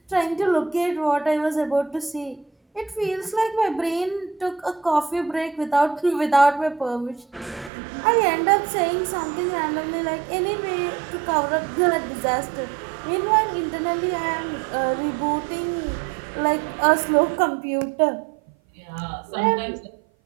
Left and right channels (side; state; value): left; drops out; at 7.7 s